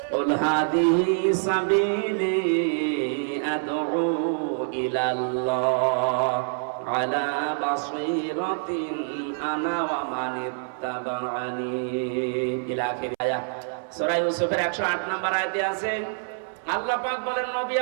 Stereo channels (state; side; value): silent; left; 61 dB below the other